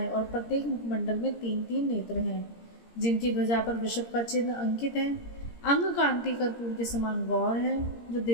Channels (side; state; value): right; late; 17 ms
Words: और प्रत्येक मुखमंडल में 3-3 नेत्र हैं, जिनकी ध्वजा पर वृषभ का चिन्ह अंकित है, अंग कांति कर्पूर के समान गौर है, जो